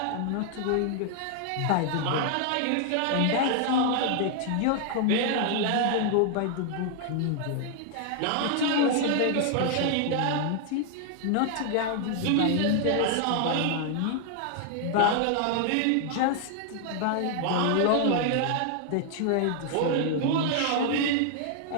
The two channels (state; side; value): different; both; correlation 0.00